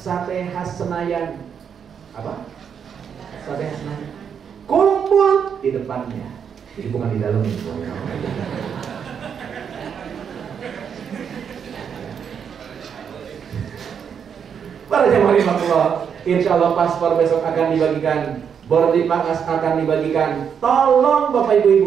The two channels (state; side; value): quieter; left; 7.4 dB